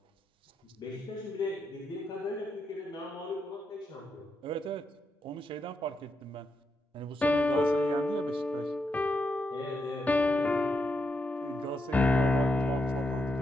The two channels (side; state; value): both; normal; correlation 0.83